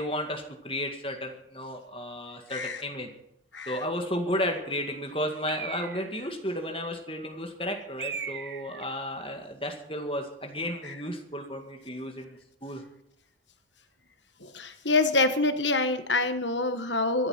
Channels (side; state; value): both; normal; correlation 0.03